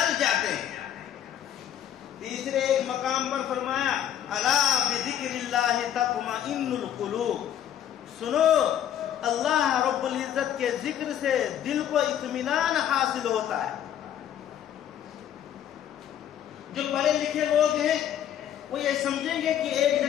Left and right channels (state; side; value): quieter; right; 10.4 dB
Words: جاتے ہیں۔ تیسرے ایک مقام پر فرمایا الا بذکر اللہ تطمئن القلوب، سنو اللہ رب العزت کے ذکر سے دل کو اطمینان حاصل ہوتا ہے۔ جو پڑھے لکھے لوگ ہیں وہ یہ سمجھیں گے کہ ایک